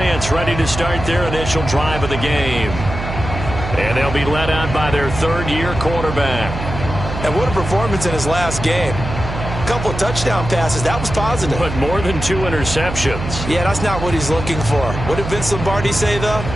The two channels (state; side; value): noise; right; hum, 7 dB below the sound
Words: ready to start their initial drive of the game. And they'll be led out by their third-year quarterback. And what a performance in his last game. Couple of touchdown passes. That was positive. But more than 2 interceptions. Yeah, that's not what he's looking for. What did Vince Lombardi say, though?